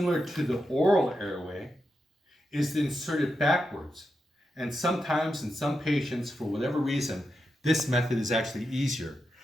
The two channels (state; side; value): normal; both; correlation 0.87